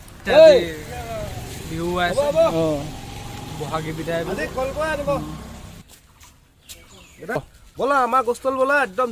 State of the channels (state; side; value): identical; both; correlation 1.00